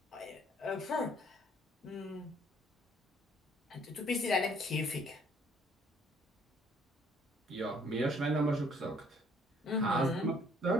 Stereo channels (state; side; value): normal; both; correlation 0.61